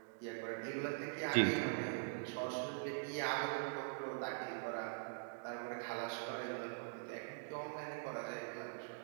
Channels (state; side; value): silent; left; digital silence